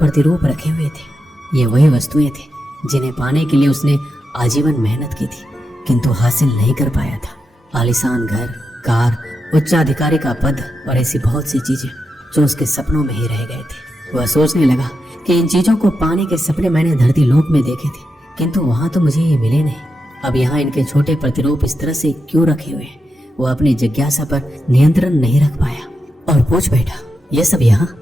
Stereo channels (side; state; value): both; normal; correlation 0.87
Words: रखे हुए थे। ये वही वस्तुएं थी जिन्हें पाने के लिए उसने आजीवन मेहनत की थी किंतु हासिल नहीं कर पाया था। आलीशान घर, कार, उच्चाधिकारी का पद और ऐसी बहुत सी चीजें जो उसके सपनों में ही रह गए थे। वह सोचने लगा कि इन चीजों को पाने के सपने मैंने धरती लोक में देखे थे किंतु वहां तो मुझे ये मिले नहीं। अब यहाँ इनके छोटे प्रतिरूप इस तरह से क्यों रखे हुए हैं? वो अपनी जिज्ञासा पर नियंत्रण नहीं रख पाया और पूछ बैठा, ये सब